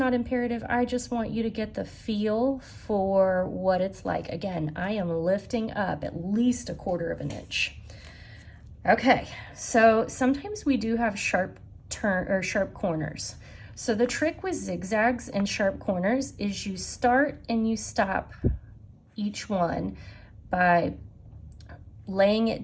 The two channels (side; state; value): both; identical; correlation 1.00